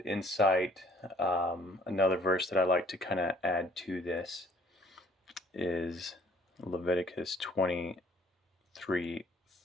insight. Another verse that I like to kind of add to this is Leviticus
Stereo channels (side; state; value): both; normal; correlation 0.58